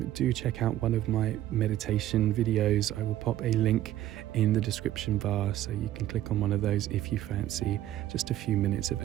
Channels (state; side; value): quieter; left; 13.3 dB